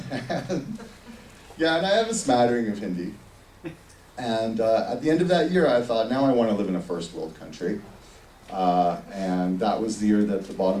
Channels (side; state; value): both; identical; correlation 1.00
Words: And I have a smattering of Hindi. And at the end of that year, I thought, now I want to live in a first world country. And that was the year that the